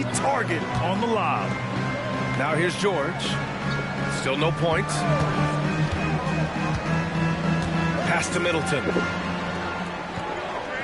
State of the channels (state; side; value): identical; both; correlation 1.00